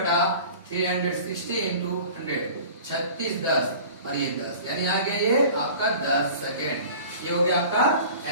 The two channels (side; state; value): both; inverted; correlation -0.42